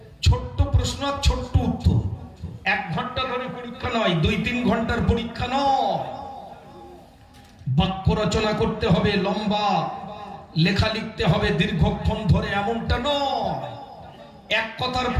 ছোট্ট প্রশ্ন আর ছোট্ট উত্তর, 1 ঘন্টা ধরে পরীক্ষা নয়, 2-3 ঘন্টার পরীক্ষা নয়। বাক্য রচনা করতে হবে, লম্বা লেখা লিখতে হবে দীর্ঘক্ষণ ধরে, এমনটা নয়। এক কথার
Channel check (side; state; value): both; identical; correlation 1.00